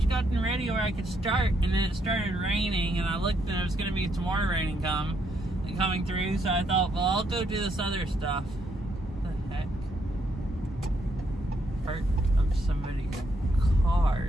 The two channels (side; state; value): both; normal; correlation 0.75